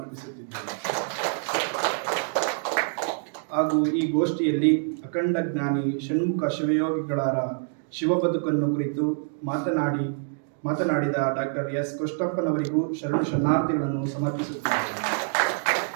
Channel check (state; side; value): silent; left; digital silence